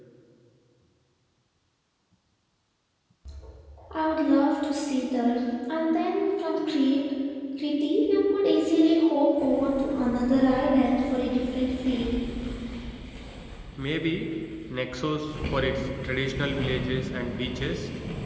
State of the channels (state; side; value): identical; both; correlation 1.00